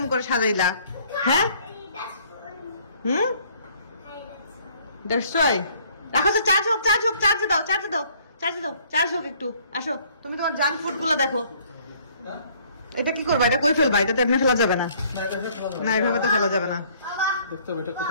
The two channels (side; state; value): both; inverted; correlation -0.59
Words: করে সাজাইলা? হ্যাঁ That's fun. Hmm, That's fun. That's রাখো তো, চার্জ হোক, চার্জ হোক একটু। আসো তুমি তোমার জাঙ্ক ফুড গুলো দেখো। এটা কি করবা? এটা কই ফেলবা? এটা তো এমনি ফেলা যাবে না। না এভাবে তো ফেলা যাবে না। Baba, দেখতে হবে এটা